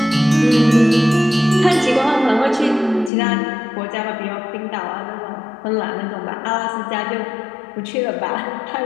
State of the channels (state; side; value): drops out; right; at 3.1 s